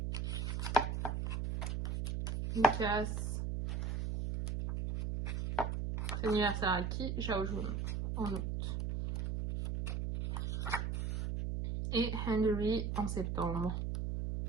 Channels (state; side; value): noise; right; hum, 1 dB below the sound